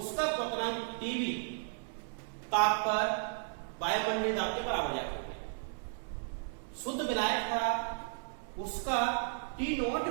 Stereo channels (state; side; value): silent; left; 55 dB below the other